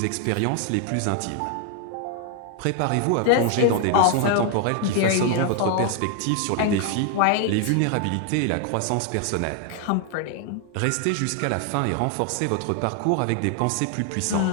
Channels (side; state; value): both; different; correlation 0.00